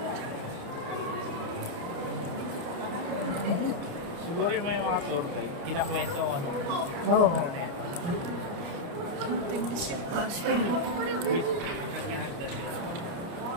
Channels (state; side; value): late; left; 29 ms